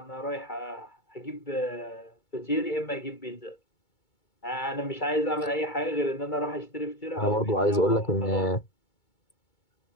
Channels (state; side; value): late; right; 2.2 ms